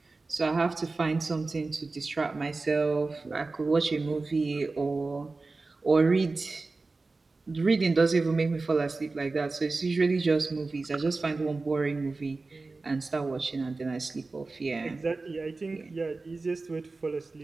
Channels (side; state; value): left; quieter; 3.6 dB